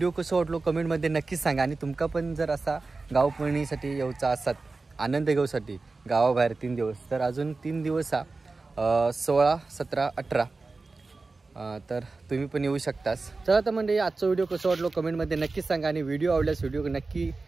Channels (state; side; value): quieter; left; 3.8 dB